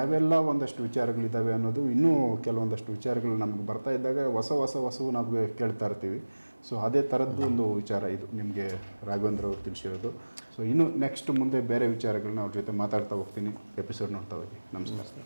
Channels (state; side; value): inverted; both; correlation -1.00